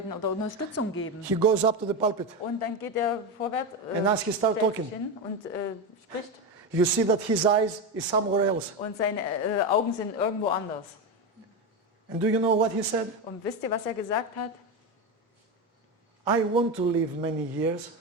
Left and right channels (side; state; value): both; normal; correlation 0.15